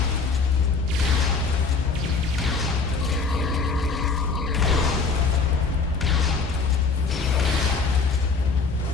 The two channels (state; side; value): quieter; right; 4.6 dB